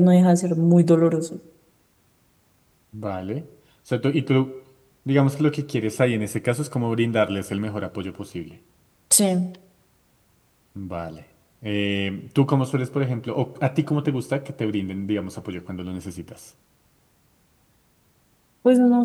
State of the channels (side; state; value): both; identical; correlation 1.00